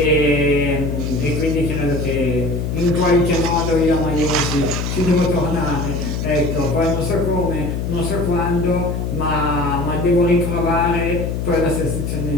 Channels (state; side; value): noise; left; hum, 2 dB below the sound